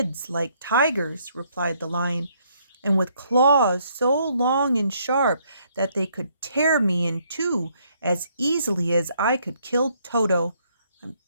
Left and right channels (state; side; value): inverted; both; correlation -0.69